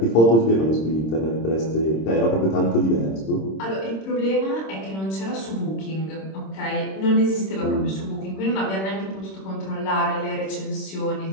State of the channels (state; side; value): late; right; 26 ms